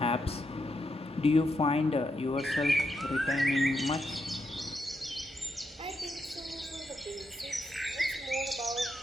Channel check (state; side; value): normal; both; correlation 0.82